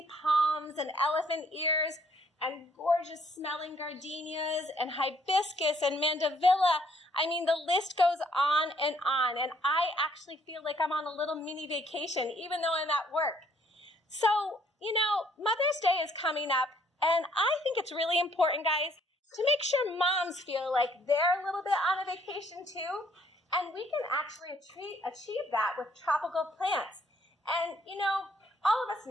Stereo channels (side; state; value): both; normal; correlation 0.65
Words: palms and elephant ears and gorgeous smelling gardenias and hibiscus and mandevilla. I mean, the list goes on, and I actually feel like I'm on a little mini vacation, even though I'm at work. So, Mother's Day is coming up, and I think it's really important, guys, to make sure moms feel like they're a little bit on a vacation too, and we can actually achieve that with tropical plants. And, all of us